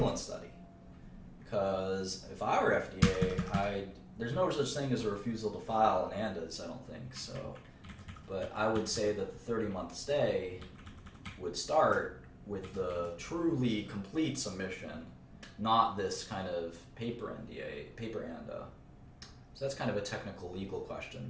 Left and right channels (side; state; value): both; identical; correlation 1.00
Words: study. Because if I were FDA, there's no such thing as a refusal to file an ANDAs, I don't think so. But I would say that the 30-month stay would start with the truly complete submission, not this kind of paper ANDA. So that's kind of a technical legal question.